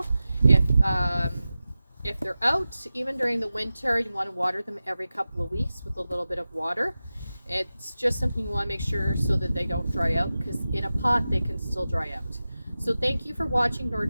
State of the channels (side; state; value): both; inverted; correlation -0.94